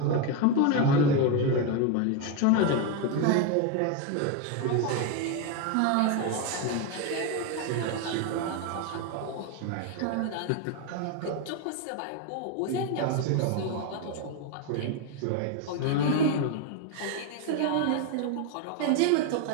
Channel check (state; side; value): different; both; correlation 0.02